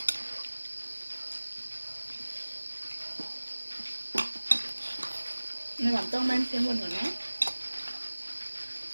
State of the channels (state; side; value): inverted; both; correlation -1.00